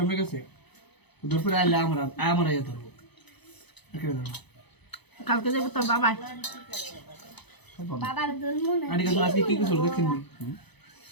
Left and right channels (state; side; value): late; right; 0.99 ms